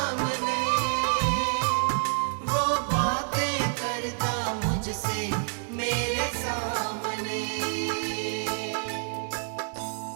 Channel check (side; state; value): left; silent; 56 dB below the other